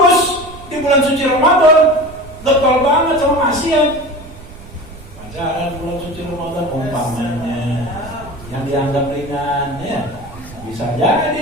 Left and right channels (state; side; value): noise; right; rumble, 17 dB below the sound